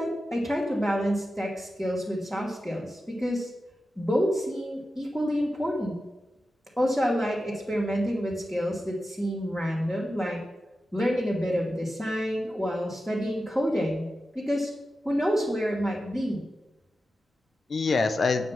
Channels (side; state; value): both; normal; correlation 0.92